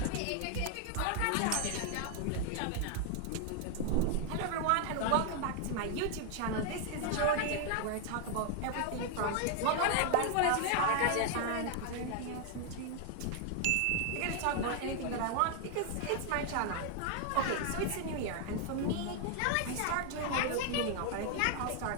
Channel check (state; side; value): different; both; correlation 0.00